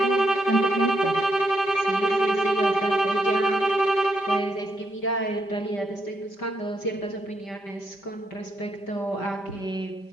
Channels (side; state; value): right; late; 5.1 ms